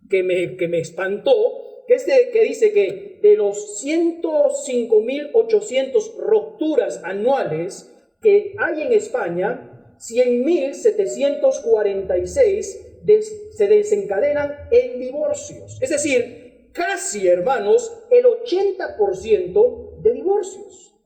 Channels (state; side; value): identical; both; correlation 1.00